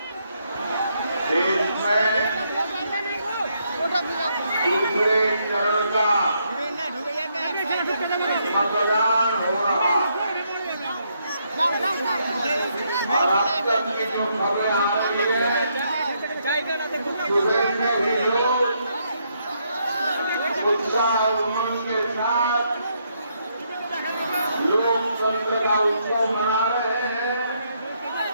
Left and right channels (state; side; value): inverted; both; correlation -0.75